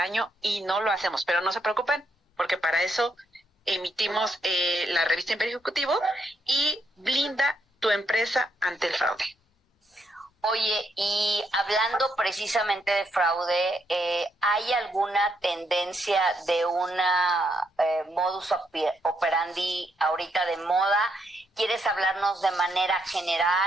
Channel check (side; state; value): both; normal; correlation 0.77